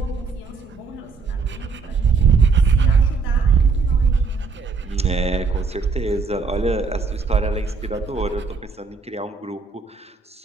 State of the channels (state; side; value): quieter; left; 4.8 dB